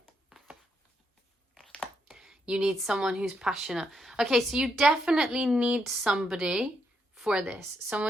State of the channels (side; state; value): both; normal; correlation 0.78